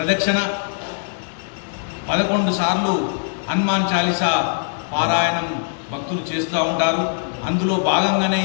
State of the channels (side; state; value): right; silent; digital silence